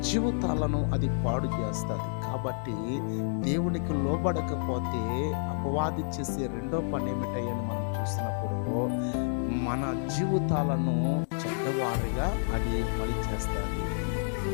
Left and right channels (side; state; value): right; silent; digital silence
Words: జీవితాలను అది పాడు చేస్తుంది. కాబట్టి దేవునికి లోబడకపోతే అపవాది చేసే రెండో పని ఏమిటని మనం చూసినప్పుడు మన జీవితాలను చెడ్డవారిగా అది పని చేస్తుంది.